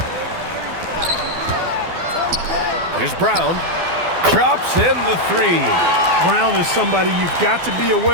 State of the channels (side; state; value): left; late; 12 ms